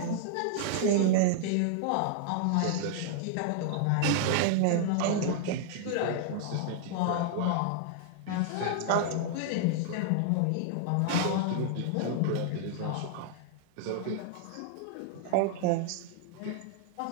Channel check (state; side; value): different; both; correlation -0.01